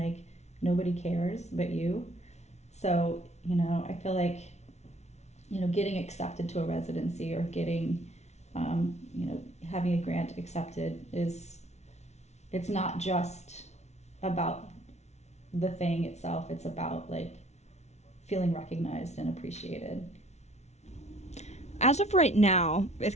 nobody cares but you. So, I feel like, getting accepted to a residency or getting, having a grant accepted it's not just about the thing itself. It's about like feeling recognized and appreciated. As of right now, it's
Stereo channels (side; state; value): right; late; 0.32 ms